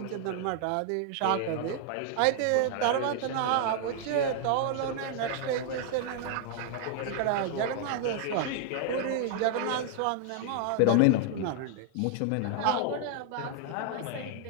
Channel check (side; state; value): both; different; correlation 0.00